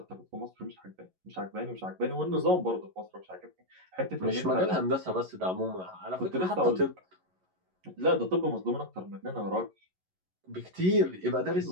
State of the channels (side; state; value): left; late; 11 ms